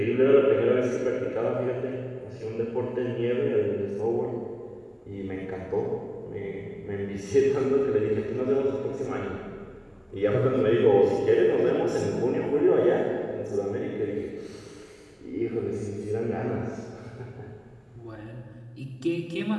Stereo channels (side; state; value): both; identical; correlation 1.00